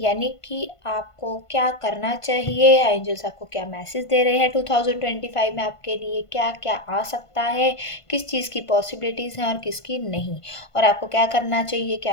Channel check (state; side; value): late; right; 1.5 ms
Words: यानी कि आपको क्या करना चाहिए, एंजल्स आपको क्या मैसेज दे रहे हैं 2025 में आपके लिए क्या क्या आ सकता है, किस चीज़ की पॉसिबिलिटीज़ हैं और किसकी नहीं, और आपको क्या करना चाहिए